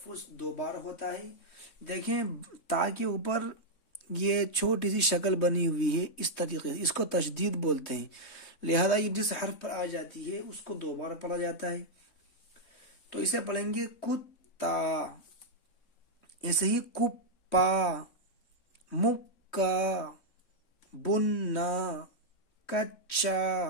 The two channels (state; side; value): late; right; 3.6 ms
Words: 2 بار ہوتا ہے۔ دیکھیں تا کے اوپر یہ چھوٹی سی شکل بنی ہوئی ہے، اس طریقے سے اس کو تشدید بولتے ہیں، لہذا یہ جس حرف پر آ جاتی ہے اس کو 2 بار پڑھا جاتا ہے، تو اسے پڑھیں گے کتا۔ ایسے ہی کپا، مکہ، بننا، کچا،